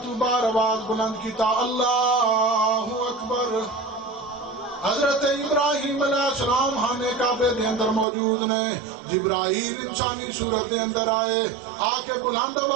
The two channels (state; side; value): drops out; left; at 8.1 s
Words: تو بار آواز بلند کیتا اللہ اکبر. حضرت ابراہیم علیہ السلام خانے کعبے دے اندر موجود نے. جبرائیل انسانی صورت دے اندر آئے, آ کے بلند